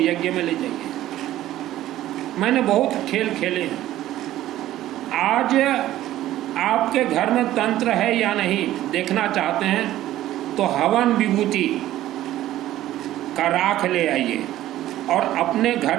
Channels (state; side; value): quieter; left; 14.0 dB